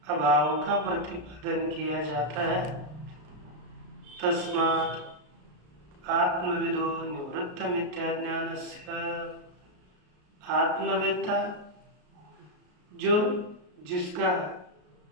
अभाव का प्रतिपादन किया जाता है। तस्मात् आत्मविदो निवृत्त मिथ्या ज्ञानस्य, आत्मवेत्ता जो जिसका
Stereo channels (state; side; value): late; left; 33 ms